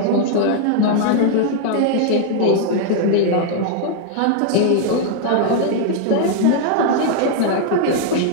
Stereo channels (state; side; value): different; both; correlation 0.00